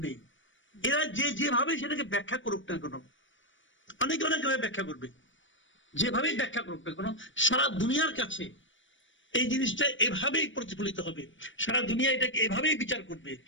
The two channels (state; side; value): late; right; 0.56 ms